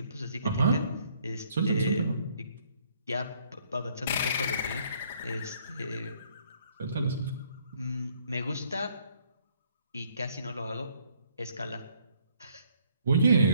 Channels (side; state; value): both; inverted; correlation -0.65